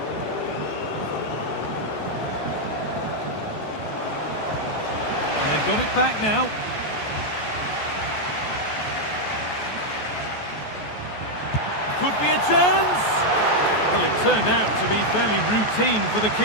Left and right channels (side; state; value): right; late; 14 ms